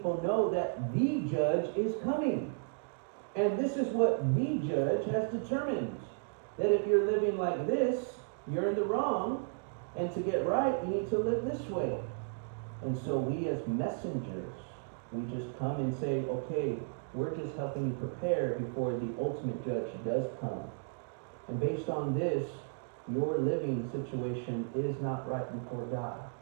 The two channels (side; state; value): left; silent; digital silence